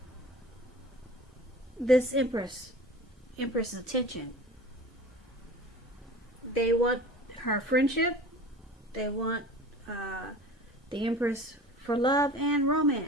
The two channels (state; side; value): normal; both; correlation 0.40